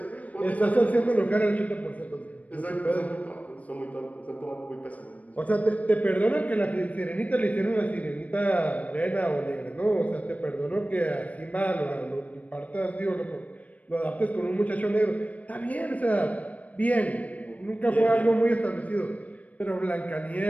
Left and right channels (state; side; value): late; right; 0.069 ms